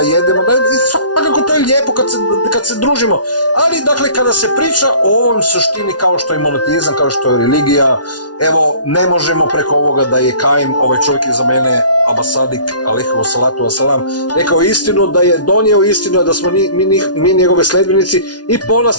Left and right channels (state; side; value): late; right; 0.69 ms